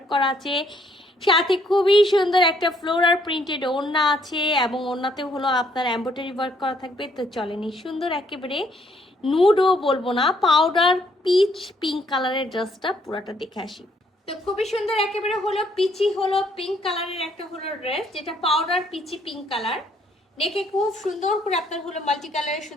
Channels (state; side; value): normal; both; correlation 0.68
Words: করা আছে, সাথে খুবই সুন্দর একটা ফ্লোরাল প্রিন্টেড ওড়না আছে, এবং ওড়নাতেও হলো আপনার এমব্রয়ডারি ওয়ার্ক করা থাকবে। তো চলেনি সুন্দর একেবারে নুডও বলবো না, পাউডার পিচ পিঙ্ক কালারের ড্রেসটা পুরাটা দেখে আসি। তো খুবই সুন্দর একেবারে হলো পিচি হলো পিঙ্ক কালারের একটা হলো ড্রেস, যেটা পাউডার পিচি পিঙ্ক কালার। নেকে খুব সুন্দর করে আপনার হলো মাল্টি কালারের